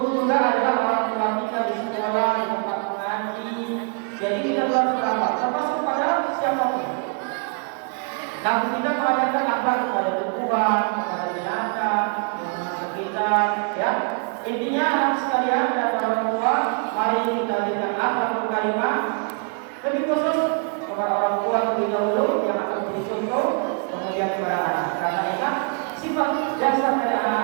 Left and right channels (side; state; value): left; quieter; 39.9 dB